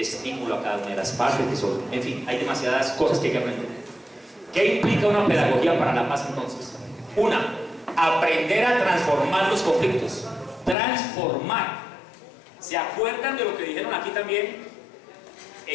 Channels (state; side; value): drops out; right; at 10.8 s